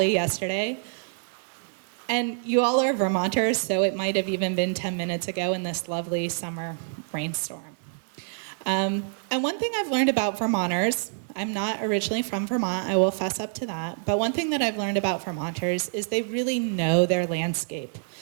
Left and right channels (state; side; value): silent; left; digital silence